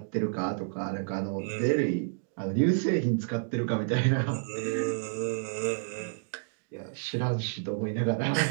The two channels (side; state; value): left; silent; digital silence